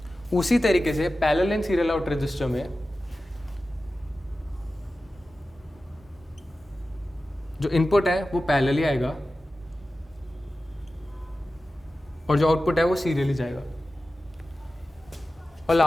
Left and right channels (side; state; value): both; normal; correlation 0.94